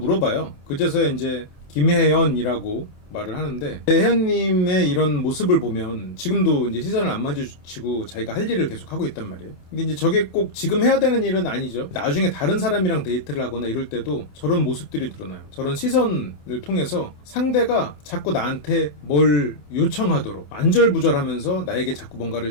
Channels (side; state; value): right; late; 28 ms